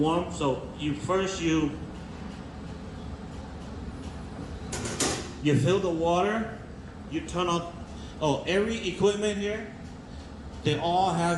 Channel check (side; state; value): both; identical; correlation 1.00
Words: So you fill the water, you turn on. Every equipment here, they all